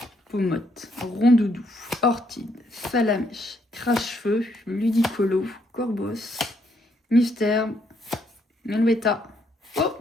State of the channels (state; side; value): normal; both; correlation 0.73